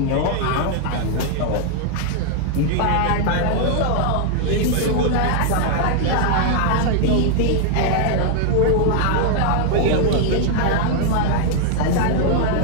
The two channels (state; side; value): different; both; correlation 0.00